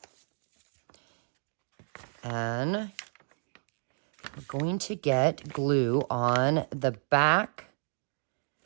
And we're going to get glue on the back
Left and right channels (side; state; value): left; silent; 57 dB below the other